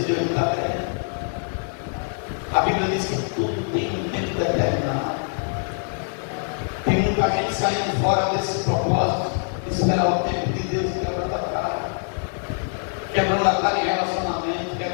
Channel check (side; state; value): right; silent; 56 dB below the other